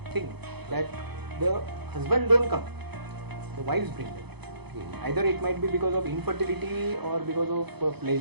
thing, that the husband don't come, the wives bring them. Either it might be because of infertility or because of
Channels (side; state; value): left; late; 0.98 ms